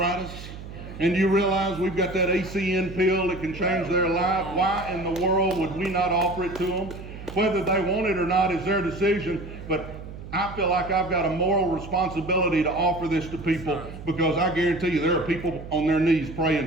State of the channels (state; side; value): noise; right; hum, 12 dB below the sound